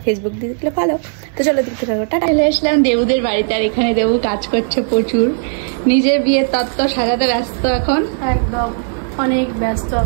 ফেসবুক দিয়ে দেখলে ফলো। তো চলো দেখতে থাকো। টাটা। চলে আসলাম দেবুদের বাড়িতে আর এখানে দেবু কাজ করছে প্রচুর, নিজের বিয়ের তত্ত্ব সাজাতে ব্যস্ত এখন। একদম অনেক ব্যস্ত,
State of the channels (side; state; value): left; silent; 57 dB below the other